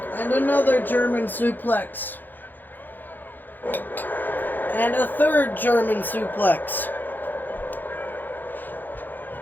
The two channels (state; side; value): late; right; 0.088 ms